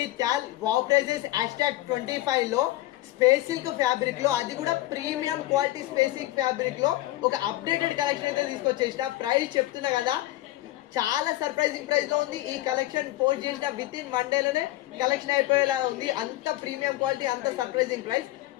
Wow prices #25 లో space silk fabric లో, అది కూడా premium quality space silk fabric లో ఒక అప్డేటెడ్ కలెక్షన్ అయితే తీసుకొచ్చేసిన. ప్రైస్ చెప్తున్నా కదా, చాలా సర్ప్రైజింగ్ ప్రైస్ లో ఉంది. ఈ కలెక్షన్ పోస్ట్ చేసిన విత్ ఇన్ 1 day లోనే కలెక్షన్ అయిపోయేలా ఉంది. అంత ప్రీమియం క్వాలిటీ, అంత సర్ప్రైజింగ్ ప్రైస్.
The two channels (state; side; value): quieter; right; 16.5 dB